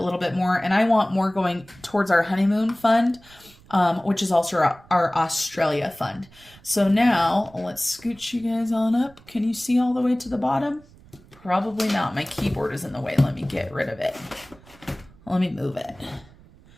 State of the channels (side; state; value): right; noise; rumble, 25 dB below the sound